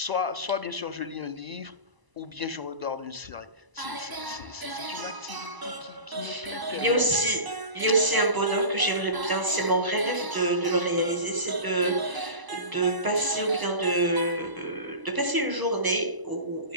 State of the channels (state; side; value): late; left; 1.0 ms